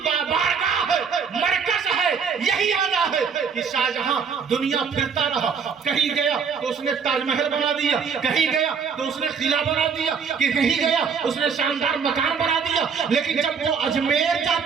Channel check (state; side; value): quieter; left; 6.2 dB